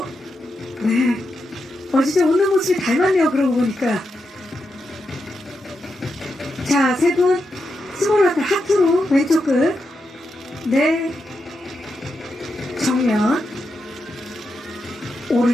네. 진짜 웃는 모습이 닮았네요. 그러고 보니까. 자, 세 분 스몰 하트로 왼쪽 끝. 네. 정면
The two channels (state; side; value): normal; both; correlation 0.86